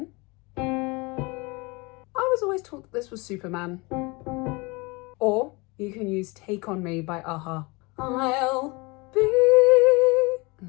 I was always taught that this was Superman. Or you can use Take On Me by a-ha. I'll be, and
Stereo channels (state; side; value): quieter; right; 26.4 dB